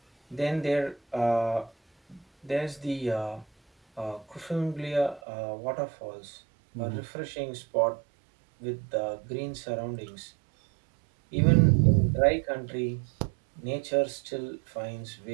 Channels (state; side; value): drops out; left; at 5.2 s